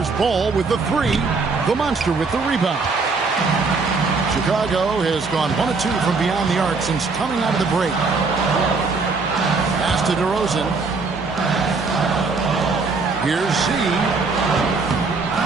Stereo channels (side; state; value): left; quieter; 4.2 dB